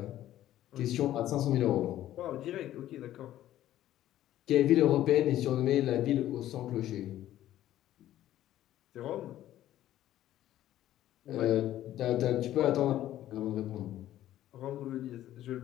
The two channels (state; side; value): quieter; right; 13.1 dB